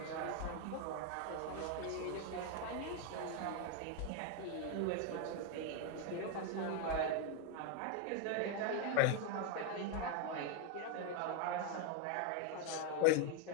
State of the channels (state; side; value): different; both; correlation 0.01